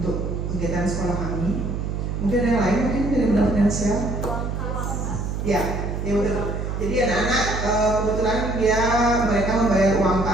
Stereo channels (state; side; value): noise; right; hum, 3 dB below the sound